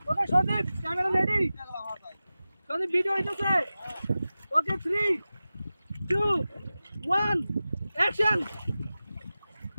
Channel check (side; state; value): both; inverted; correlation -0.95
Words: okay Sadip camera ready Sadip video হইতেছে ওকে 3 2 1 অ্যাকশন